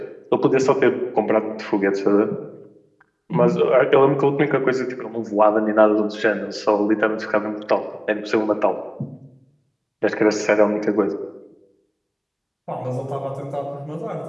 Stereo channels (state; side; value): identical; both; correlation 1.00